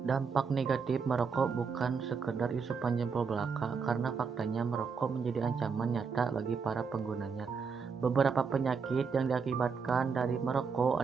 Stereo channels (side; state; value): left; quieter; 5.6 dB